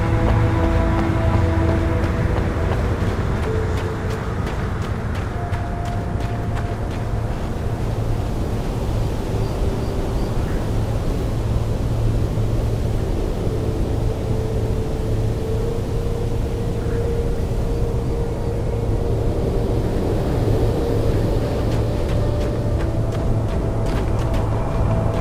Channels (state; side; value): identical; both; correlation 1.00